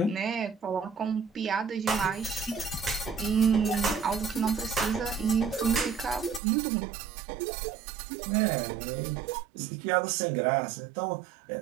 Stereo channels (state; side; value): drops out; left; at 6.4 s